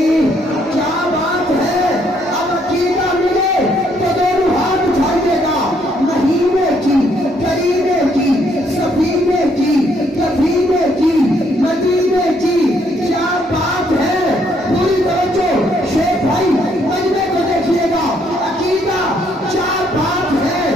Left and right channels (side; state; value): both; normal; correlation 0.70